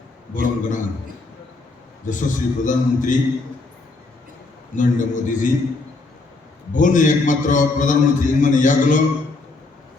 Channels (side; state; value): right; quieter; 3.4 dB